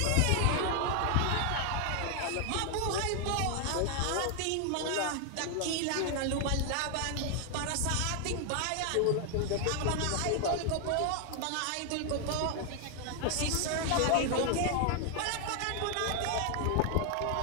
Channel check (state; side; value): different; both; correlation 0.00